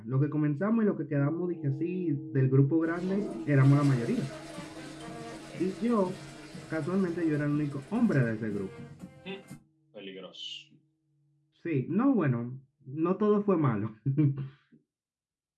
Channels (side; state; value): both; identical; correlation 1.00